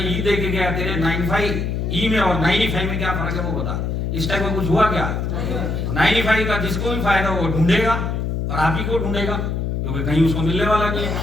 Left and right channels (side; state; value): left; noise; hum, 1 dB below the sound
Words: ई दे के गया, तेरे 95 ई में और 95 में क्या फर्क है वो बता। इस टाइप का कुछ हुआ क्या? 95 का जिसको भी फायदा हो ढूंढेगा और आप ही को ढूंढेगा, क्योंकि कहीं उसको मिलने वाला नहीं है।